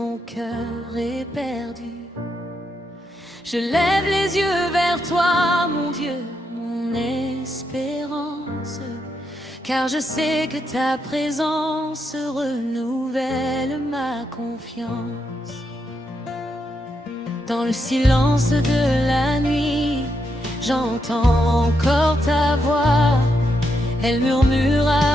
cœur est perdu, je lève les yeux vers toi, mon Dieu, mon espérance, car je sais que ta présence renouvelle ma confiance. Dans le silence de la nuit, j'entends encore ta voix. Elle murmure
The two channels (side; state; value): both; normal; correlation 0.81